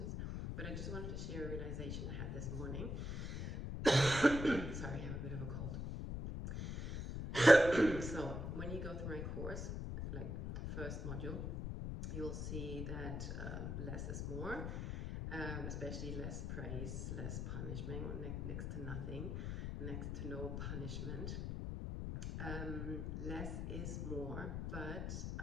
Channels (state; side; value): noise; left; rumble, 3 dB below the sound